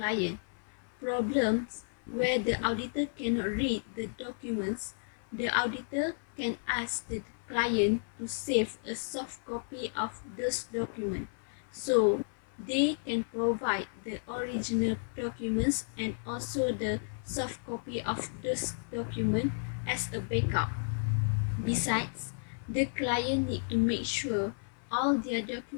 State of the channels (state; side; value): silent; right; 56 dB below the other